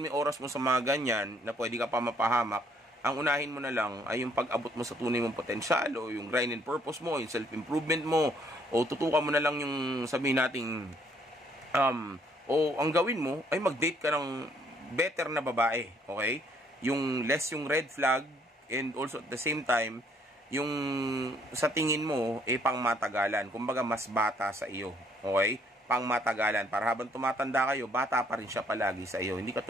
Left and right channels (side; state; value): both; normal; correlation 0.66